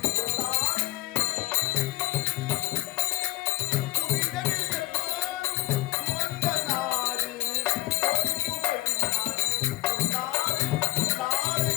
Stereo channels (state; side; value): quieter; right; 19.6 dB